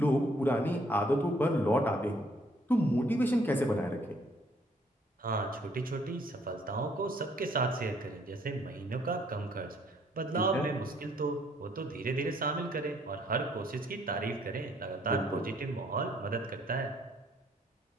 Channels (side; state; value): both; normal; correlation 0.65